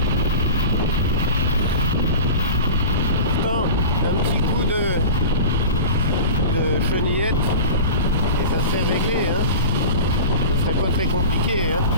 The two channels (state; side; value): inverted; both; correlation -0.33